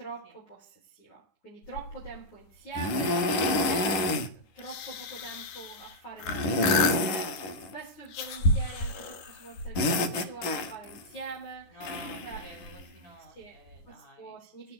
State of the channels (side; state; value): right; late; 10 ms